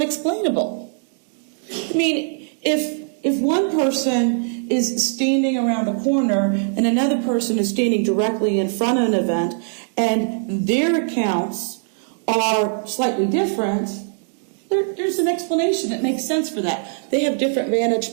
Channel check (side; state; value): left; silent; digital silence